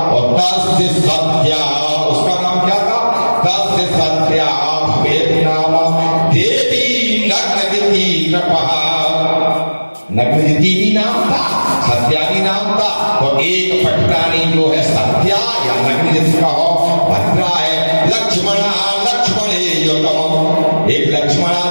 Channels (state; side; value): inverted; both; correlation -1.00